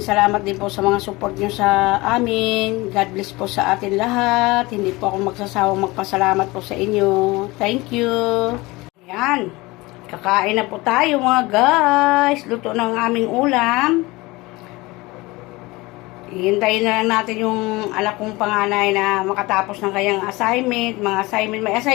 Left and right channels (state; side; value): quieter; right; 22.0 dB